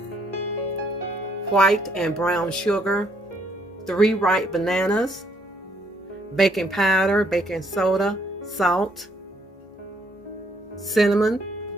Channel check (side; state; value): both; normal; correlation 0.69